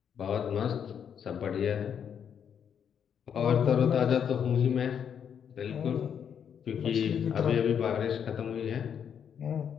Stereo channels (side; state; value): right; quieter; 8.0 dB